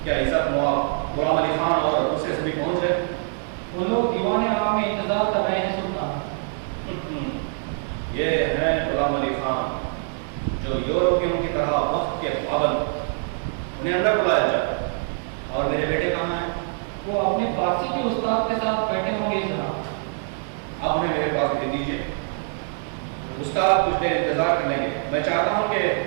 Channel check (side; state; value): left; silent; 61 dB below the other